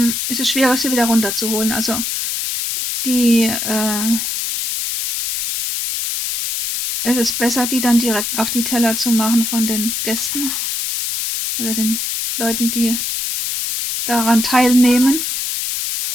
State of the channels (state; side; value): noise; left; hiss, 2 dB below the sound